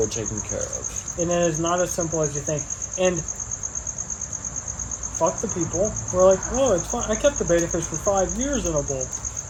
taking care of. And it is not as simple as you think. And fuck the people who are like, oh, it's fine. I kept the beta fish for 5 years in a bowl.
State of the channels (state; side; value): identical; both; correlation 1.00